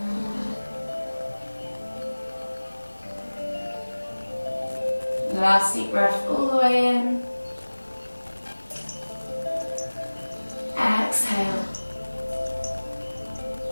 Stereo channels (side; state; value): both; inverted; correlation -1.00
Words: Last deep breath all the way in. Exhale.